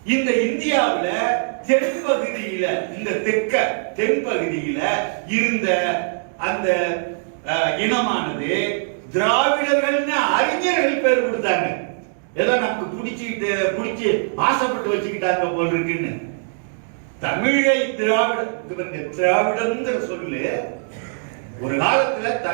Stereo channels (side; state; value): left; silent; digital silence